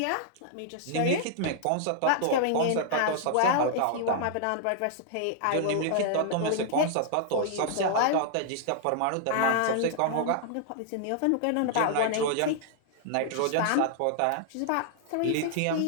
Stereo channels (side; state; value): both; different; correlation -0.01